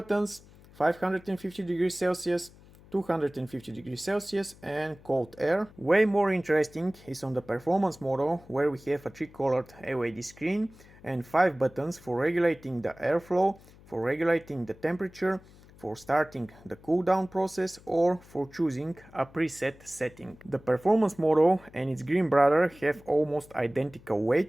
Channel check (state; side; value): noise; left; hum, 23 dB below the sound